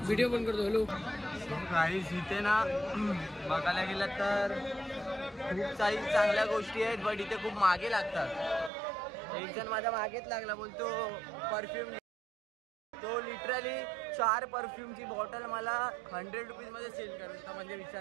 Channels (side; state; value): left; drops out; at 8.7 s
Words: व्हिडिओ बंद करतो. हॅलो गाईस, इथे ना बघायला गेलं तर खूप काही चांगल्या गोष्टी आहेत, बट इथे खूप मागे लागतात. एक जण माझ्या मागेच लागला, बोलतो परफ्यूम. तो लिटरली 4 परफ्यूमची बॉटल मला 100 रुपीज मध्ये सेल करतो. म्हणजे